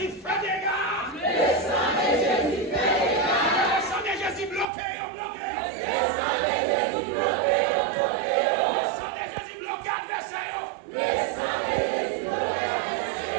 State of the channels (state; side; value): drops out; left; at 4.7 s